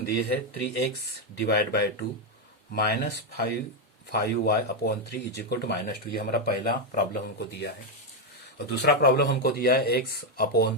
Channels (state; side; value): normal; both; correlation 0.04